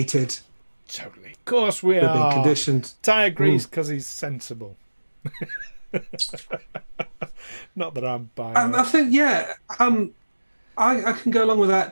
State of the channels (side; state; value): both; inverted; correlation -1.00